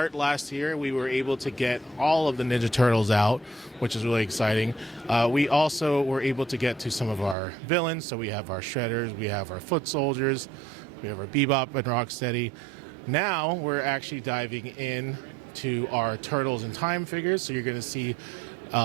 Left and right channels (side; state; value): left; drops out; at 7.4 s